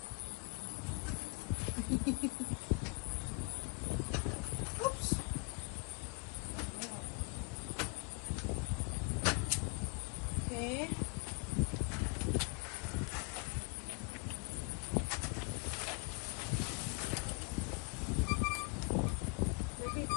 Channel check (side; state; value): right; quieter; 35.1 dB